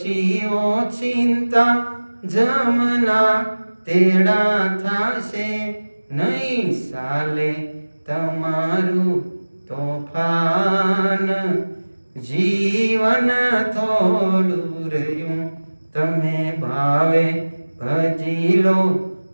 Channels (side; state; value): both; inverted; correlation -1.00